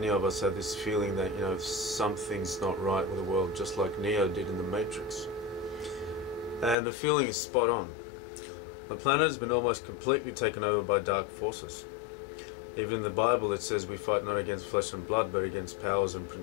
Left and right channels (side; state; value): right; drops out; at 6.8 s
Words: of us have this feeling that, something's not right with the world, just like Neo did in the Matrix. And the feeling is spot on. The planet has been almost completely taken over by dark forces. Even in the Bible it says we fight not against flesh and blood, but against powers and